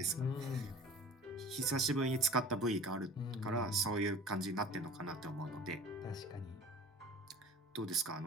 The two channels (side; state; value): both; normal; correlation 0.44